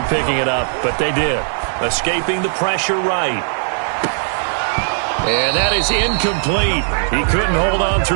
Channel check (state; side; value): silent; left; 63 dB below the other